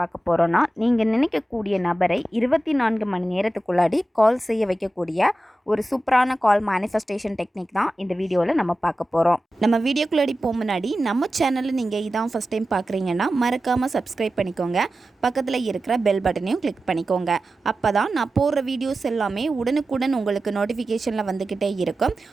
போகிறோன்னா, நீங்கள் நினைக்கக்கூடிய நபரை 24 மணி நேரத்துக்குள்ளாடி கால் செய்ய வைக்கக்கூடிய ஒரு சூப்பரான கால் மேனிஃபெஸ்டேஷன் டெக்னிக் தான் இந்த வீடியோவில் நம்ம பார்க்க போகிறோம். நம்ம வீடியோக்குள்ளாடி போக முன்னாடி நம்ம சேனலில் நீங்கள் இதான் ஃபஸ்ட் டைம் பார்க்குறீங்கன்னா மறக்காமல் சப்ஸ்கிரைப் பண்ணிக்கோங்க. பக்கத்தில் இருக்கிற பெல் பட்டனையும் கிளிக் பண்ணிக்கோங்க. அப்போ தான் நான் போடுற வீடியோஸ் எல்லாமே உடனுக்குடன் உங்களுக்கு நோட்டிஃபிகேஷனில் வந்துக்கிட்டே இருக்கும்.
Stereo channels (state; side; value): normal; both; correlation 0.94